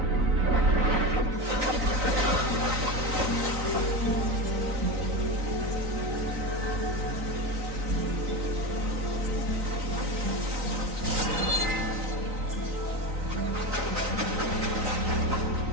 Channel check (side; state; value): left; late; 3.9 ms